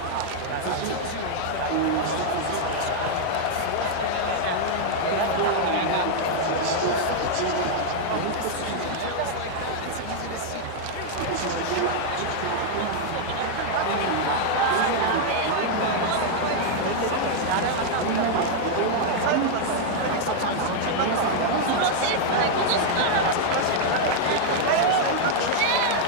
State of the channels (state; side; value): different; both; correlation -0.01